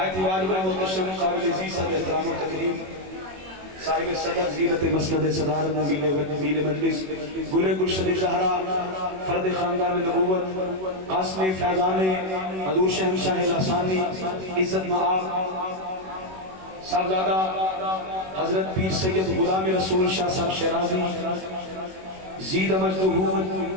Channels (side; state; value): left; late; 21 ms